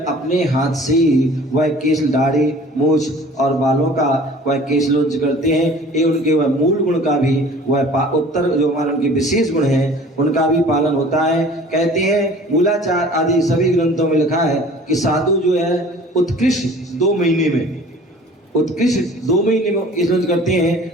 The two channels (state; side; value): normal; both; correlation 0.47